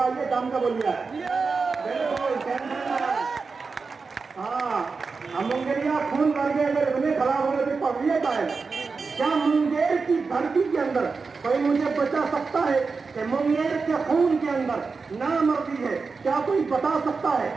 آئیے کام کا بولیا ہے. ہاں ہم منگلیا خون مر گئے اگر اتنے خراب ہونے پہ پڑھیے کا ہے. کیا منگیر کی دھرتی کے اندر کوئی مجھے بتا سکتا ہے کہ منگیر کے خون کے اندر نامردی ہے؟ کیا کوئی بتا سکتا ہے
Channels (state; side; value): quieter; left; 4.6 dB